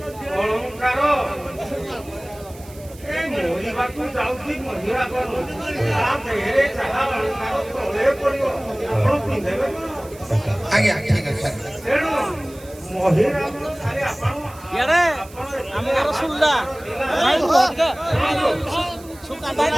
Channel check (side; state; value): right; noise; hiss, 22 dB below the sound